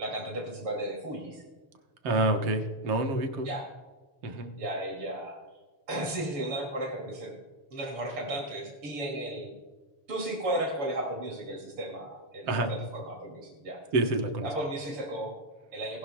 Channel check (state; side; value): late; left; 7.0 ms